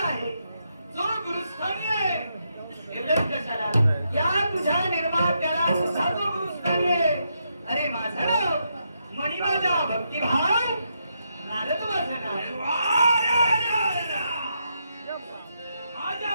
जो गुरुस्थानी आहे, एवढंच कशाला या तुझ्या निर्मात्याला तुझा जो गुरुस्थानी आहे. अरे माझं नाव मणी, माझा भक्तिभाव नारद माझं नाव.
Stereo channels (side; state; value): both; inverted; correlation -0.81